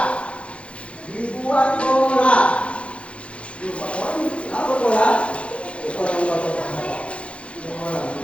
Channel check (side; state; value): right; late; 0.060 ms